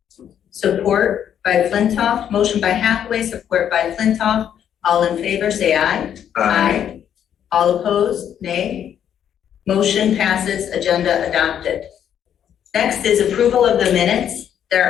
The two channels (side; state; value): right; quieter; 9.4 dB